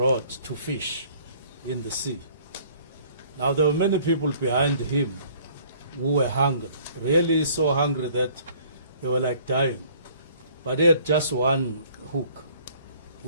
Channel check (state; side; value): inverted; both; correlation -0.56